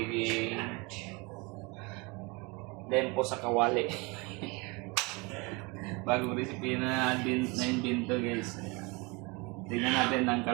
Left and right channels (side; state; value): left; quieter; 27.5 dB